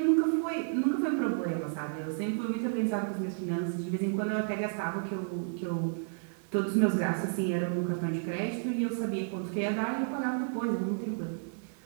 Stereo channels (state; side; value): silent; left; 57 dB below the other